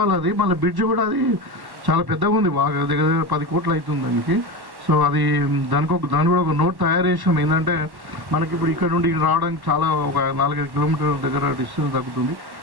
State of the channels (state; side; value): late; left; 1.1 ms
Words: అది మళ్ళీ బ్రిడ్జ్ కూడా అది చాలా పెద్దగా ఉంది, బాగా దగ్గర 10 కోట్లు అవుతుంది దానికి. సో అది దాని కూడా ఒక నోట్ తయారు చేసాం. ఏంటంటే మనకి ఇప్పుడు ఇక్కడ నుండి రావడానికి చాలా ఒక 4-5 కిలోమీటర్ల దగ్గర డిస్టెన్స్ తగ్గుతుంది.